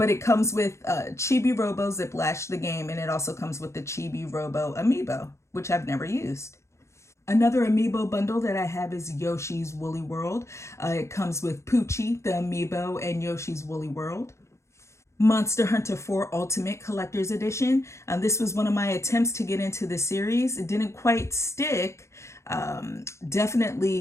it comes with Chibi Robo Ziplash, the game, and it also comes with the Chibi Robo Amiibo, which I've never used. Another Amiibo bundle that I have is Yoshi's Woolly World. It comes with Poochie, the Amiibo, and Yoshi's Woolly World. Monster Hunter 4 Ultimate Collector's Edition. This was one of my attempts to get into the series. It didn't quite stick.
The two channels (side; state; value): right; late; 0.14 ms